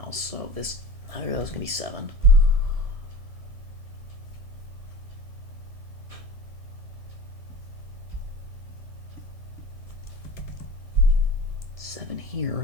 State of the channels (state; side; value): late; left; 1.6 ms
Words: else. So this, neither of those can be 7. Seven here